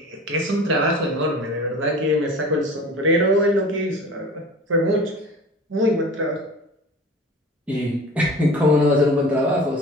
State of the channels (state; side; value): normal; both; correlation 0.39